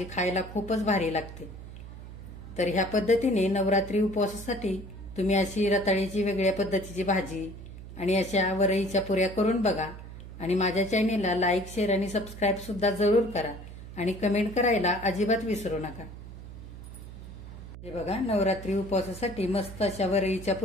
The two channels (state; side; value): noise; right; hum, 13 dB below the sound